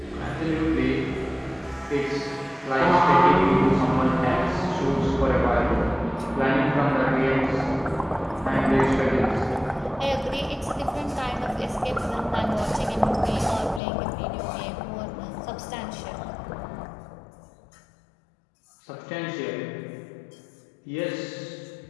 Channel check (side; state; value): right; drops out; at 13.8 s